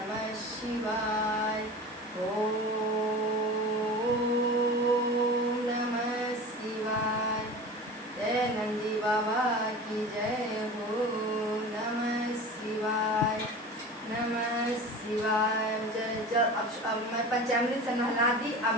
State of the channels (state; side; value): normal; both; correlation 0.35